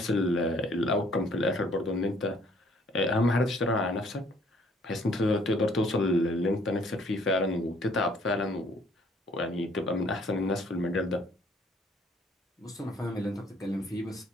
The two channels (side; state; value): both; normal; correlation 0.61